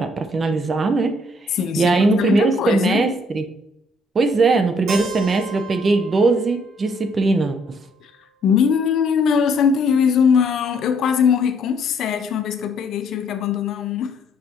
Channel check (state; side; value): normal; both; correlation 0.66